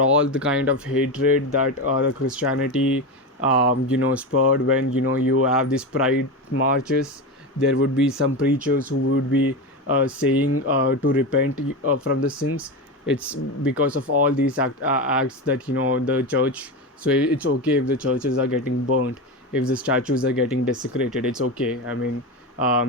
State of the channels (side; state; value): both; normal; correlation 0.19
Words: all the kind of hatred that the Christianity, spurred when you have these pride marches, there would be some preachers who would be saying to repent from the sins. It's because of all these acts that the church. So it's okay if the churches are getting burnt, if the statues are getting desecrated. It's okay. I mean,